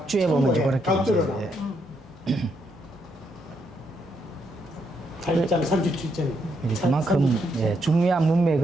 보면 이제 그렇게 각주로 이제, 나와. 예. 8장 37절. 이제 그만큼 예, 중요한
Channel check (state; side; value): normal; both; correlation 0.77